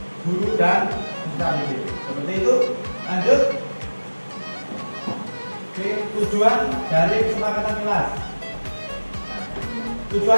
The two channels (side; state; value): both; inverted; correlation -1.00